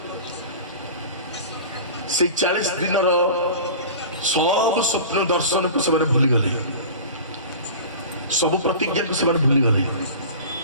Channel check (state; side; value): inverted; both; correlation -0.36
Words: ସେଇ 40 ଦିନର ସବୁ ସ୍ୱପ୍ନ ଦର୍ଶନକୁ ସେମାନେ ଭୁଲିଗଲେ, ସବୁ ପ୍ରତିଜ୍ଞାକୁ ସେମାନେ ଭୁଲିଗଲେ।